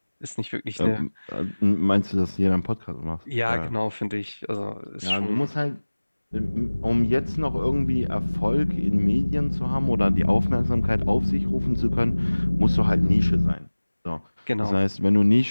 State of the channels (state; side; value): inverted; both; correlation -1.00